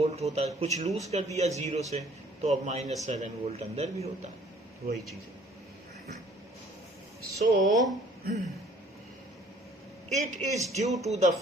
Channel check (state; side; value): normal; both; correlation 0.57